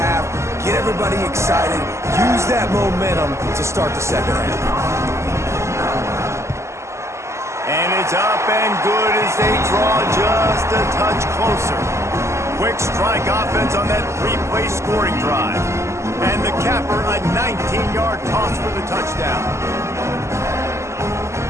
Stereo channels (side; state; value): left; late; 0.13 ms